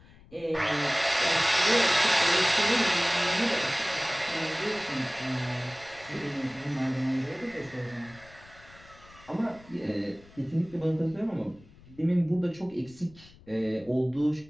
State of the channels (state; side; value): noise; left; rumble, 24 dB below the sound